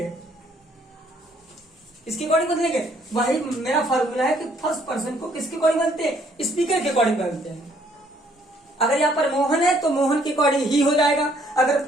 इसके अकॉर्डिंग बदलेंगे। वही मेरा फार्मूला है कि फर्स्ट पर्सन को किसके अकॉर्डिंग बदलते हैं? स्पीकर के अकॉर्डिंग बदलते हैं। अगर यहाँ पर मोहन है तो मोहन के अकॉर्डिंग ही हो जाएगा, अगर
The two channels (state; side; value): normal; both; correlation 0.65